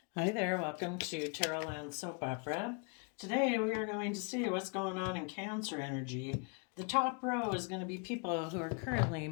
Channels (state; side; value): quieter; right; 35.0 dB